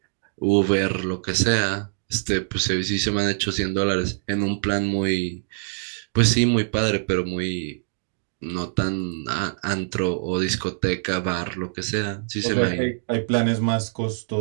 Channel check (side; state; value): left; silent; 62 dB below the other